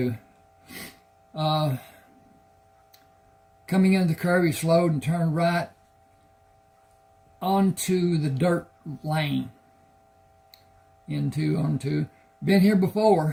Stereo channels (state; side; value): identical; both; correlation 1.00